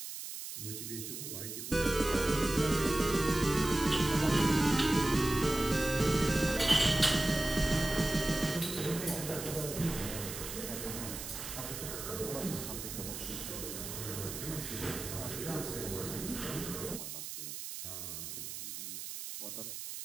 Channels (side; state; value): right; noise; hiss, 8 dB below the sound